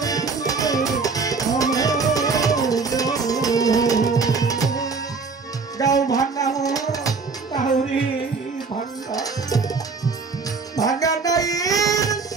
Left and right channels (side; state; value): left; quieter; 4.6 dB